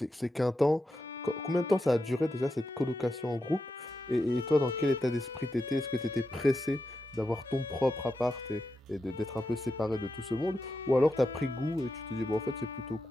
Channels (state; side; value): normal; both; correlation 0.88